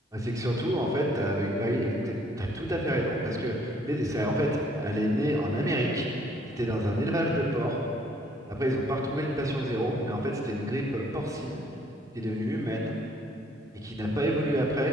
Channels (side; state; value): both; normal; correlation 0.63